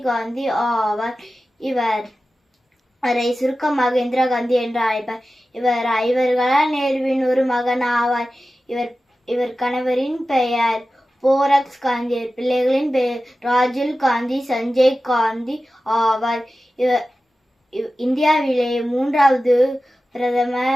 காந்தி ஆவார். இவரை சுருக்கமாக இந்திரா காந்தி என்று அழைப்பார். இவர் ஐவர்களால் நேருவின் ஒரு மகன் ஆவார். இவர் கணவரின் பெயர் போரக்ஸ் காந்தி. பிள்ளைகளின் பெயர் ராஜுல் காந்தி, சஞ்சய் காந்தி ஆவார். இந்தியாவிலே 3வது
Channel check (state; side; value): normal; both; correlation 0.94